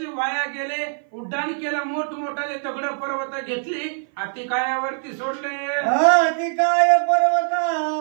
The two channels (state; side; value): silent; left; 57 dB below the other